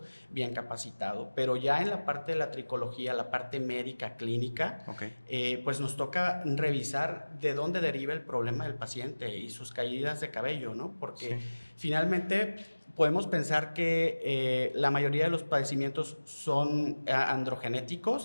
bien capacitado, pero ya en la parte de la tricología, la parte médica, clínica, okay, pues nos toca revisar de dónde deriva el problema del paciente y sus caídas de cabello, ¿no? Porque sí, finalmente podemos pensar que la mayoría de los padecimientos son androgenéticos,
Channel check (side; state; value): both; inverted; correlation -1.00